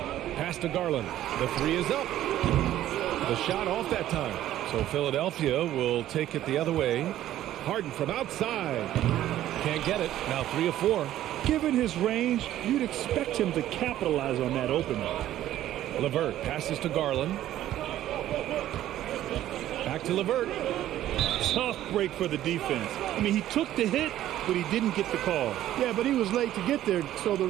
Pass to Garland. The three is up. The shot off that time. So Philadelphia will take it the other way. Harden from outside. Can't get it. Now 3 of 4. Given his range, you'd expect him to capitalize on that opening. LeVert passes to Garland. Back to LeVert. Tough break for the defense. I mean, he took the hit, but he didn't get the call. Yeah, but he was late to get there, so the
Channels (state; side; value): quieter; left; 13.0 dB